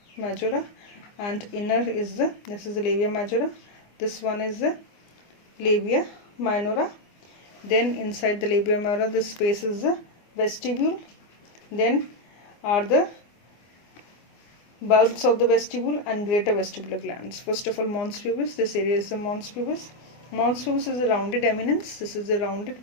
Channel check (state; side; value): late; right; 24 ms